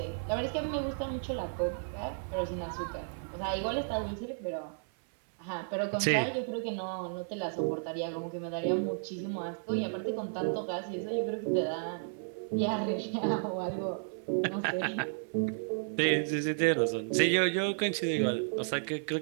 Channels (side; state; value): left; silent; 56 dB below the other